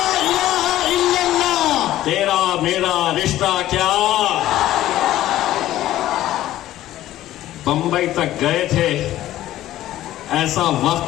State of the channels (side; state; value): right; quieter; 14.0 dB